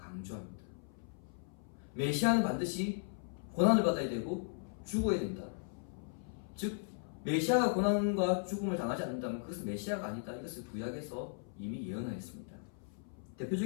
메시아는 반드시 고난을 받아야 되고 죽어야 된다. 즉 메시아가 고난과 죽음을 당하지 않는다면 그것은 메시아가 아니다, 이것을 구약에서 이미 예언하였습니다.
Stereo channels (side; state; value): right; silent; 53 dB below the other